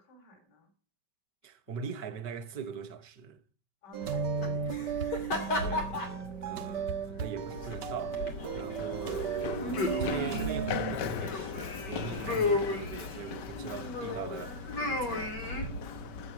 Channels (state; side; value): late; right; 5.2 ms